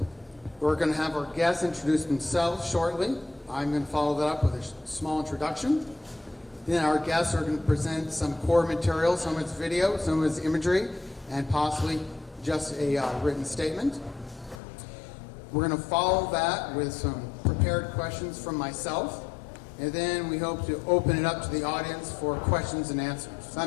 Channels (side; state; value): right; drops out; at 14.6 s